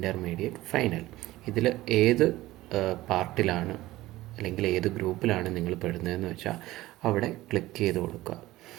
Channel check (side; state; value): left; quieter; 17.2 dB